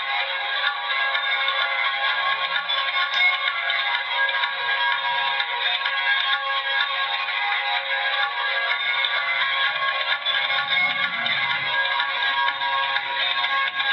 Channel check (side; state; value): both; identical; correlation 1.00